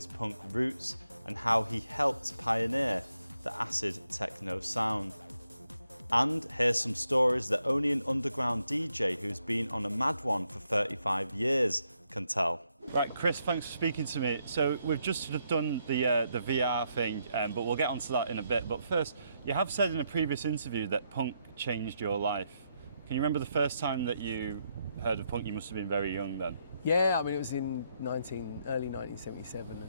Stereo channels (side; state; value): both; inverted; correlation -0.78